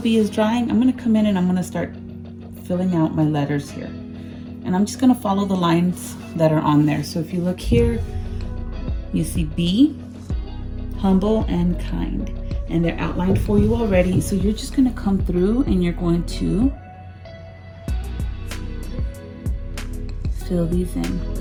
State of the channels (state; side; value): identical; both; correlation 1.00